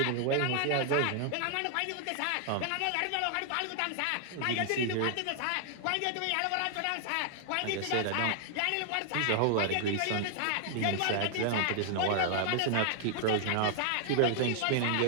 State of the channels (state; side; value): different; both; correlation 0.00